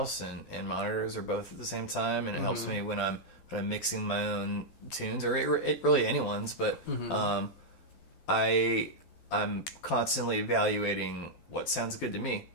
and monitors are both at the same time, and it helps me when I'm mixing my own tunes or really anyone's. But I'm constantly evaluating what sounds good to me,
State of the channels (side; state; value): right; late; 12 ms